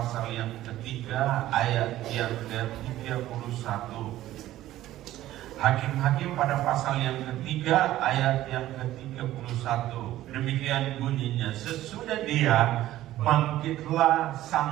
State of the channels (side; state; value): left; quieter; 14.4 dB